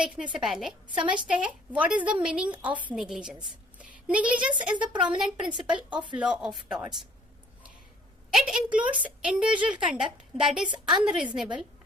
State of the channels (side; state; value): both; normal; correlation 0.57